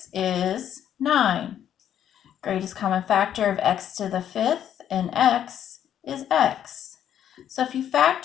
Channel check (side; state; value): right; quieter; 10.0 dB